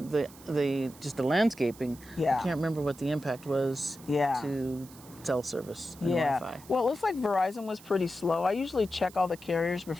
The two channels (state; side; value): noise; right; hiss, 21 dB below the sound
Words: just the landscaping. Yeah. I can't remember what the impact was to cell service and Wi-Fi. Well, it looks like Verizon was pretty slow. I usually check all the carriers